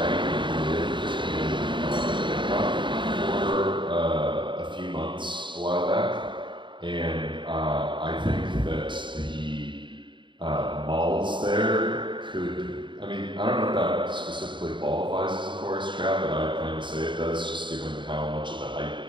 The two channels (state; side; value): late; left; 0.23 ms